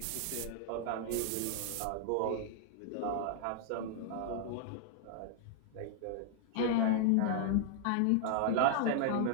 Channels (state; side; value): different; both; correlation -0.01